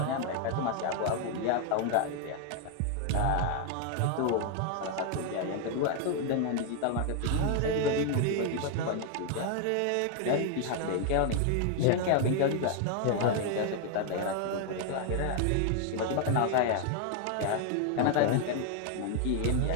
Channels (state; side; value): different; both; correlation 0.00